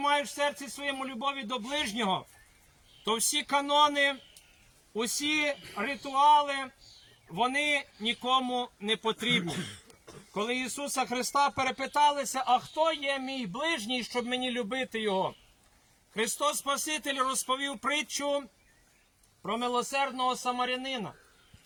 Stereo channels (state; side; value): identical; both; correlation 1.00